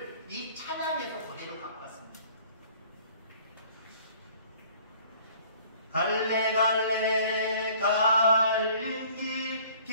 이 찬양에서 그대로 갖고 왔습니다. 갈래 갈린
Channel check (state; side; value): inverted; both; correlation -0.53